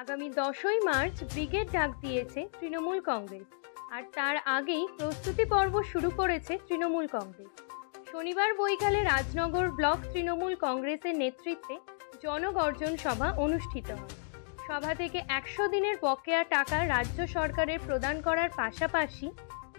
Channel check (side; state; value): right; silent; digital silence